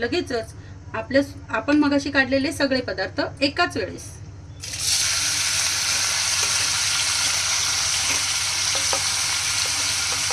आपण मगाशी काढलेले सगळे पदार्थ एकाच वेळेस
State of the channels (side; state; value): both; identical; correlation 1.00